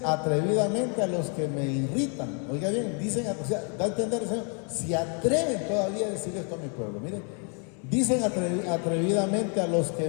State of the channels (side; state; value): right; quieter; 39.7 dB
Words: atrevidamente a los que me irritan. Oiga bien, dicen, o sea, da a entender el Señor, si atreven todavía a decir esto a mi pueblo. Miren, dicen atrevidamente a los